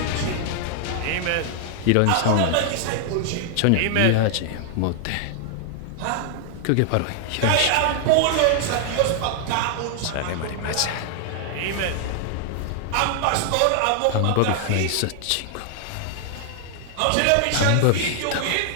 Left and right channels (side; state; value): both; different; correlation 0.00